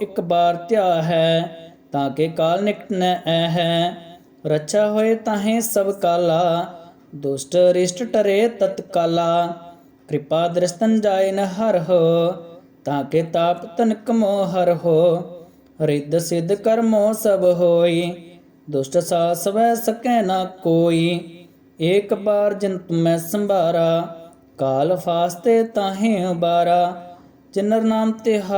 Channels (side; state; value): both; identical; correlation 1.00